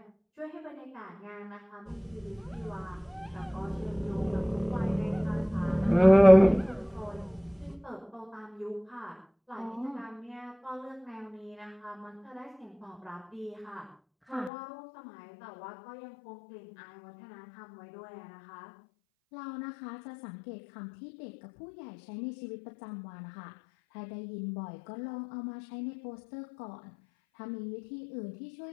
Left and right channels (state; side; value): drops out; right; at 14.5 s